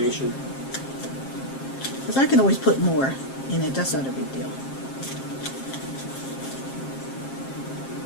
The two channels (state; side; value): late; right; 7.5 ms